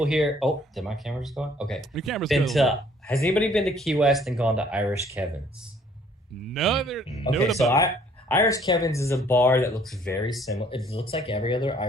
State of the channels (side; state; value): both; normal; correlation 0.60